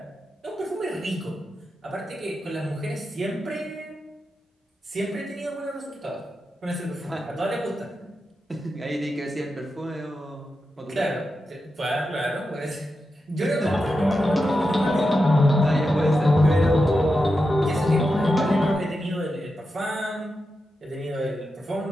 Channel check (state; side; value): normal; both; correlation 0.89